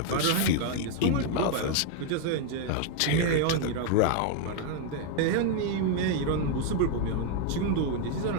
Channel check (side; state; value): both; different; correlation 0.00